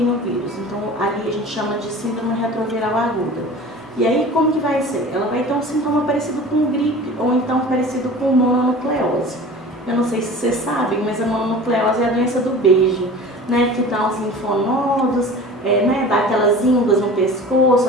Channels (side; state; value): both; normal; correlation 0.39